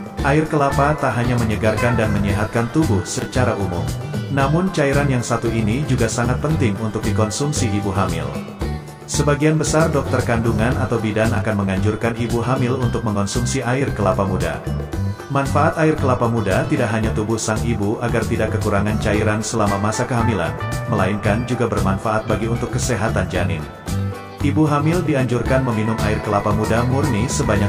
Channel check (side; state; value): both; identical; correlation 1.00